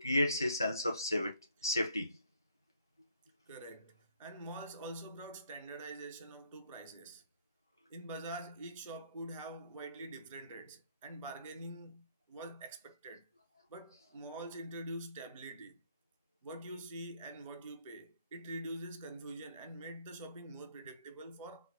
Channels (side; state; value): both; inverted; correlation -0.67